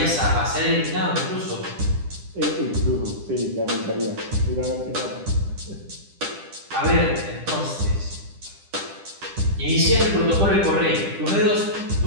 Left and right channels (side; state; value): left; late; 10 ms